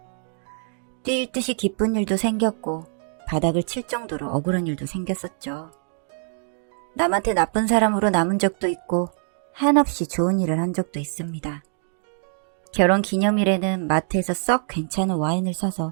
뛸 듯이 기쁜 일도 생겼고 바닥을 칠 정도로 억울한 일도 생겼었죠. 남한테 나쁜 사람으로 남은 적도 있고 한없이 좋은 일을 한 적도 있습니다. 결혼 기념일에는 마트에서 썩 괜찮은 와인을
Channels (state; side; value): silent; left; digital silence